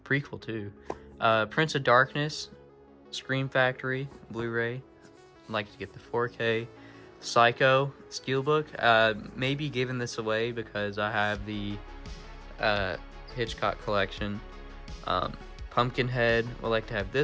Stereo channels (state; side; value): identical; both; correlation 1.00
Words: Prequel too. Prince of Darkness, Scream Factory, Blu-ray. I'd like to get the 4K. Psycho Steelbook. Maybe giving this away because I have the Hitchcock collection. Pumpkinhead, would like to have